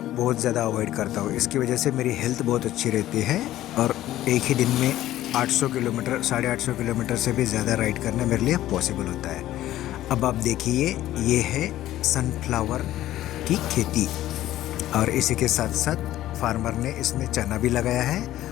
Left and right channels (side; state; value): right; quieter; 14.1 dB